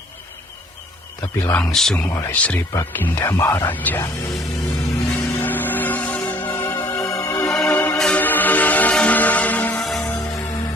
tapi langsung oleh Sri Baginda Maharaja.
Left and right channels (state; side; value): normal; both; correlation 0.56